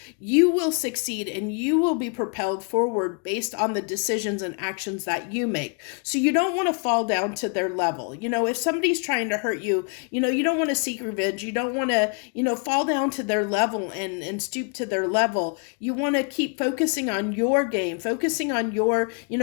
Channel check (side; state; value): right; quieter; 38.3 dB